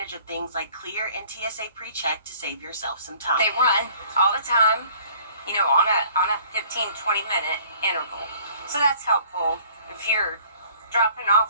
of things like Clear and TSA PreCheck to save yourself some time. They run all the time, you know, on a 15-20 minute interval. So that's helpful if you're dropping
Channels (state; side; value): inverted; both; correlation -0.54